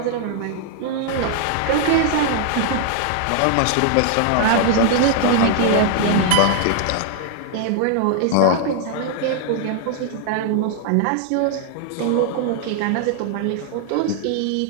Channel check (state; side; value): different; both; correlation 0.00